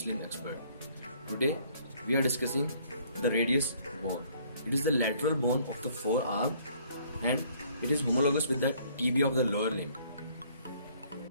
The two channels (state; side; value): inverted; both; correlation -0.61